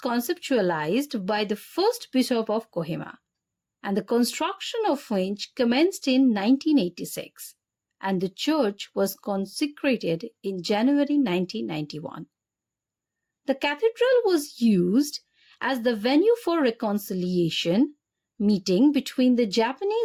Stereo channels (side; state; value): both; identical; correlation 1.00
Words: by the first bishop of Kohima, and the construction of which commenced in 1986, and the church was consecrated in January 1991. The cathedral was used as the venue for reconciliation meeting between the